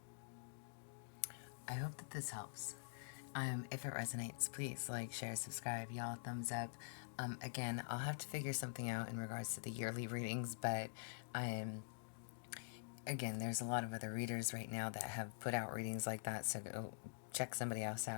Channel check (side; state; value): right; silent; digital silence